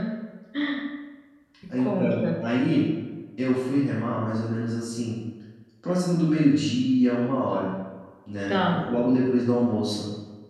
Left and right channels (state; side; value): identical; both; correlation 1.00